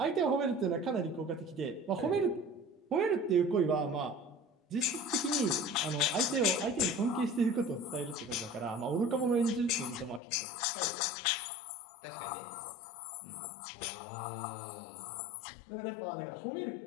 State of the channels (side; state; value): right; drops out; at 10.2 s